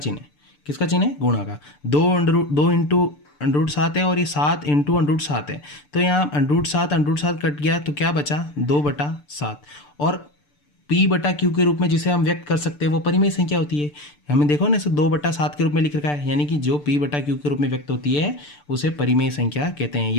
है। किसका चिन्ह है? गुणा का। 2 इंटू √7 है और ये 7 इंटू √7 है। तो यहाँ √7 कट गया तो क्या बचा? 2/7। और P/Q के रूप में जिसे हम व्यक्त कर सकते हैं वो परिमेय संख्या होती है। हमें देखो ना, इसे 2/7 के रूप में लिख रखा है, यानी कि जो P/Q के रूप में व्यक्त होती है उसे परिमेय संख्या कहते हैं।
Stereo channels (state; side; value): late; right; 6.8 ms